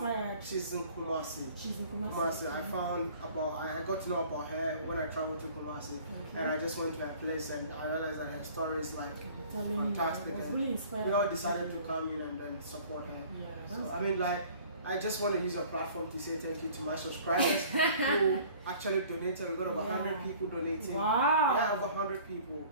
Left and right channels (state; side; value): inverted; both; correlation -0.50